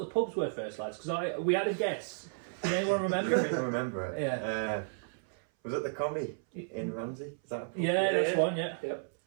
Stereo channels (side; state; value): left; silent; 56 dB below the other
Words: the pubs were first, lads? Because we had a guess. Can anyone remember? I can remember it. Yeah. Was it the Combi in Ramsey? Is that a pub? Yeah, that's one, yeah. Yep.